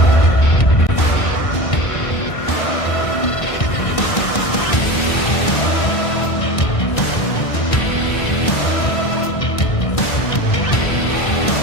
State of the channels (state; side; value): late; right; 1.6 ms